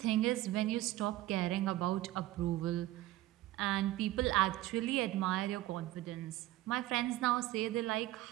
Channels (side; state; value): left; quieter; 15.8 dB